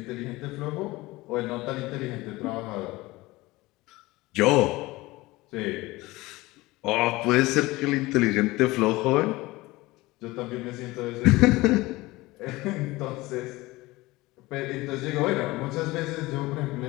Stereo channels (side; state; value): right; quieter; 20.3 dB